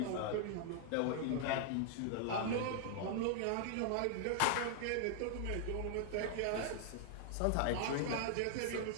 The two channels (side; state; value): both; different; correlation 0.00